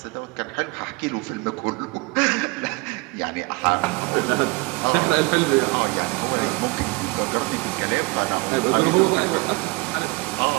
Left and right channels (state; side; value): quieter; left; 25.6 dB